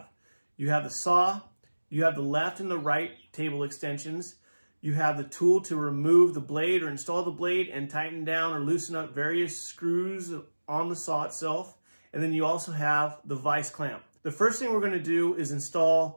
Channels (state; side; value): inverted; both; correlation -1.00